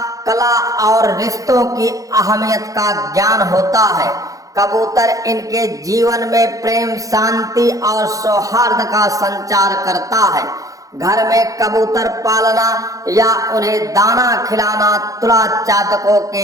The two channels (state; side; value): late; left; 0.17 ms